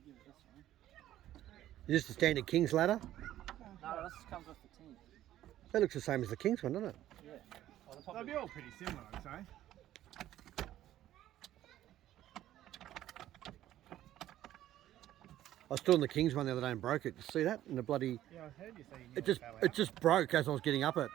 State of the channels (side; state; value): left; quieter; 13.1 dB